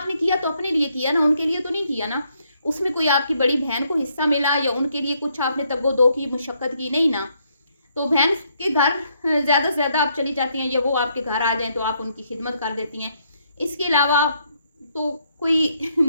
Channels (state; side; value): inverted; both; correlation -0.73